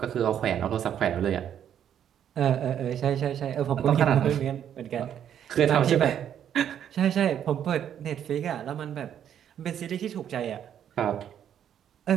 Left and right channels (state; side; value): quieter; left; 9.6 dB